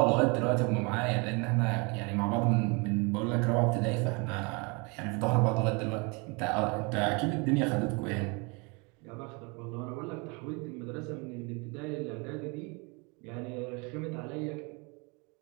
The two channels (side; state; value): left; quieter; 30.3 dB